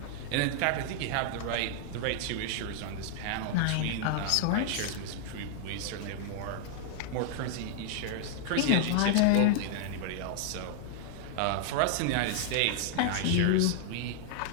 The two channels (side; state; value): both; different; correlation -0.01